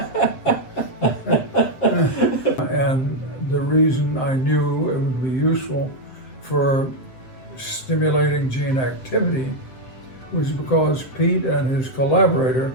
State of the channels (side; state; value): right; late; 7.7 ms